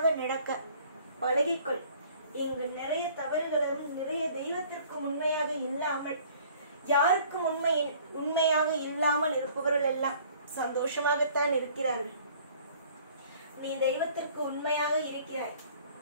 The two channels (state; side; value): inverted; both; correlation -0.54